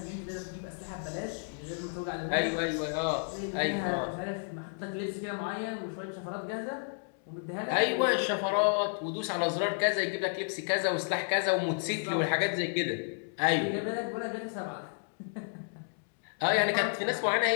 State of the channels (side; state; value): right; silent; digital silence